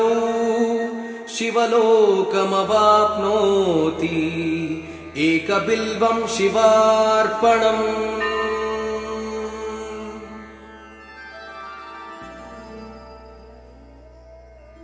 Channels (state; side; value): identical; both; correlation 1.00